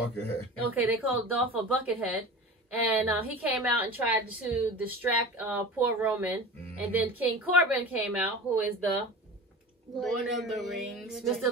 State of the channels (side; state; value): both; normal; correlation 0.34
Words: Okay, they called Dolph a buckethead. And he came out and tried to distract poor Roman. And then King Corbin came out, who is the Lord of the Rings. Mr.